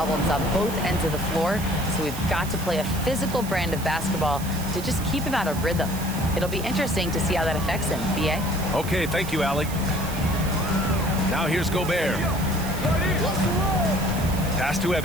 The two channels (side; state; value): right; noise; hiss, 12 dB below the sound